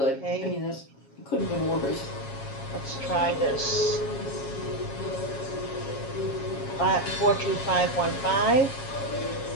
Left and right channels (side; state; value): right; late; 7.3 ms